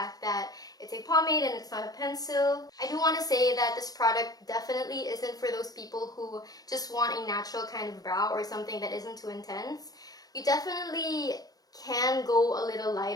that it's a pomade and it's not a pencil. I do want to say that this product definitely isn't for those people who just want a natural kind of brow or something that isn't too intense. You definitely can go a little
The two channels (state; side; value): late; right; 0.18 ms